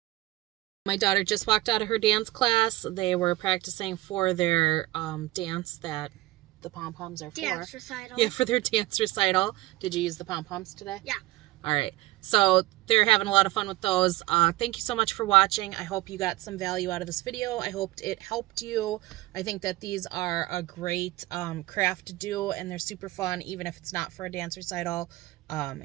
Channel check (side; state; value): left; quieter; 18.3 dB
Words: My daughter just walked out of her dance class. They were practicing for their dance that the pom-poms are for. Dance recital. Yeah, for their dance recital. Did you use the pom-poms today? Yeah. All right. So they're having a lot of fun with those. Thank you so much for watching. I hope you got some value out of this video. I hoped it helped you. I think that these are a great craft to do, and they're super fun, even if it's not for a dance recital,